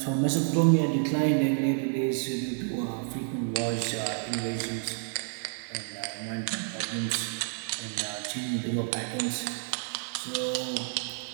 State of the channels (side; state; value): left; silent; 58 dB below the other